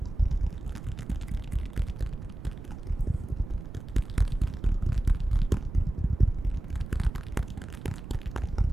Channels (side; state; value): right; noise; rumble, 11 dB below the sound